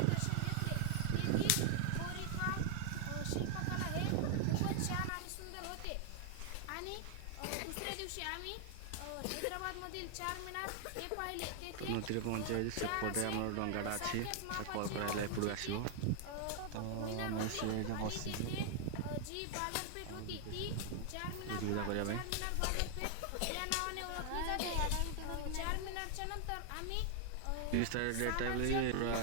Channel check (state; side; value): different; both; correlation 0.00